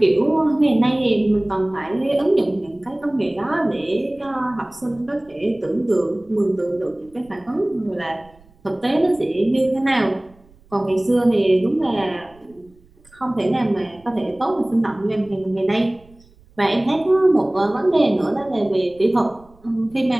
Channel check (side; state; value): right; noise; rumble, 29 dB below the sound